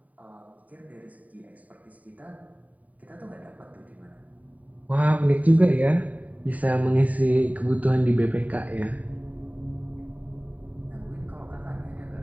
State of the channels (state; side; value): late; left; 0.072 ms